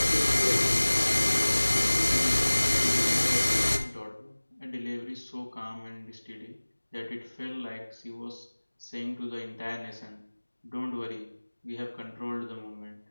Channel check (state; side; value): inverted; both; correlation -1.00